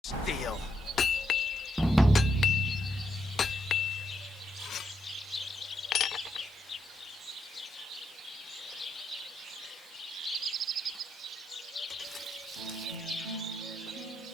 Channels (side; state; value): both; normal; correlation 0.79